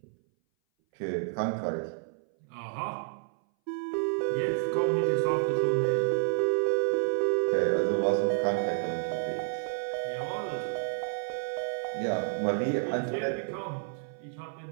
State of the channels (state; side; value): silent; left; 58 dB below the other